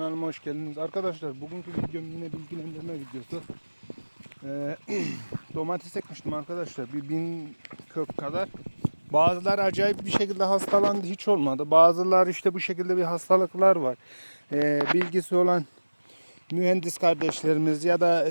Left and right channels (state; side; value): inverted; both; correlation -1.00